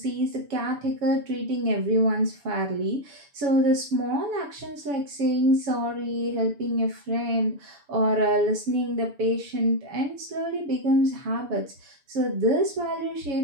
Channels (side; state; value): left; late; 6.9 ms